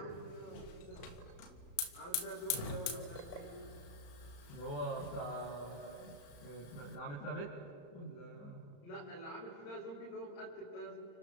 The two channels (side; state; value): right; late; 35 ms